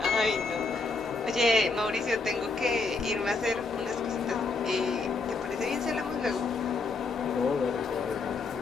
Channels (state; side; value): quieter; right; 4.0 dB